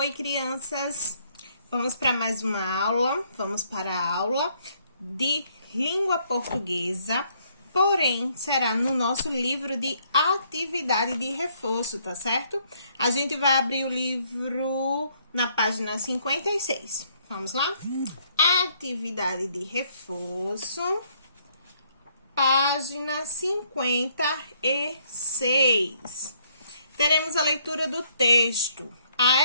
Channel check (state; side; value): inverted; both; correlation -0.68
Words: crianças! Vamos para mais uma aula. Vamos para a aula de língua portuguesa, porém, será no nosso livro de atividade de reforço, tá certo? A gente vai abrir o livro na página 56. Vamos lá? Atividade de reforço, página 56. Teremos a leitura do texto,